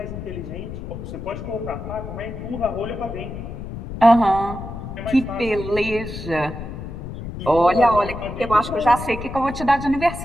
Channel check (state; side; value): noise; left; rumble, 9 dB below the sound